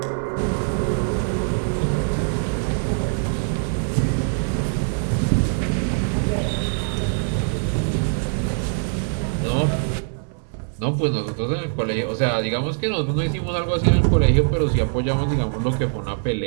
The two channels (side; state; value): left; silent; 61 dB below the other